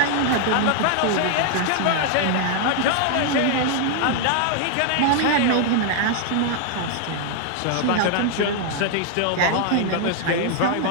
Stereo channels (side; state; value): both; different; correlation 0.00